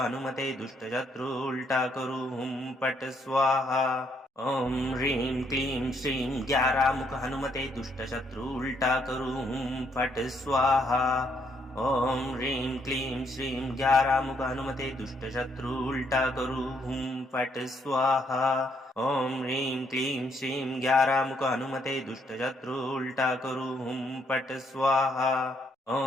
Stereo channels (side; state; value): both; normal; correlation 0.72